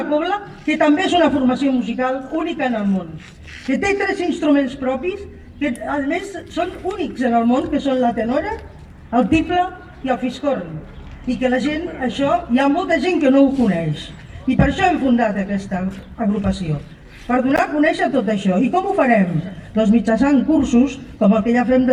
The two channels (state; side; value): identical; both; correlation 1.00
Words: cobla que també és una formació musical única en el món, que té 3 instruments propis, que a més són únics en el món, que són la tenora, el tiple i el fiscorn, i que la gent, això, hi ha molta gent que no ho coneix, i per això hem fundat aquesta agrupació, per donar a conèixer tot això. I com ho farem? Doncs mitjançant cursos, com el que ja fem